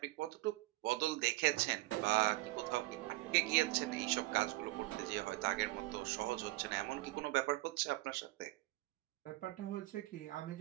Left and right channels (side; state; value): left; quieter; 19.5 dB